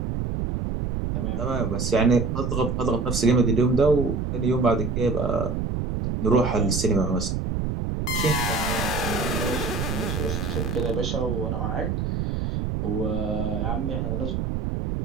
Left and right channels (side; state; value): right; noise; rumble, 1 dB below the sound